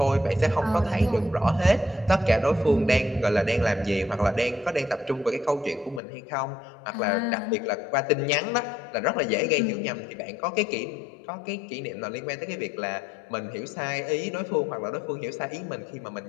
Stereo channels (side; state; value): right; drops out; at 6.0 s